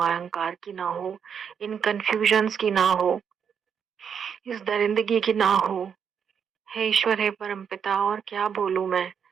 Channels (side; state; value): left; quieter; 7.3 dB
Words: अहंकार की ना हो, इन कन्फ्यूजन्स की ना हो, इस दरिंदगी की ना हो। हे ईश्वर, हे परमपिता, और क्या बोलूं मैं।